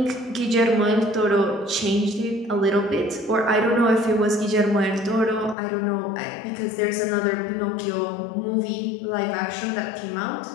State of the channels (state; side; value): drops out; right; at 5.6 s